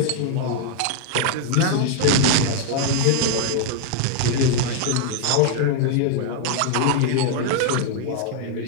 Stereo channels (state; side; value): different; both; correlation 0.00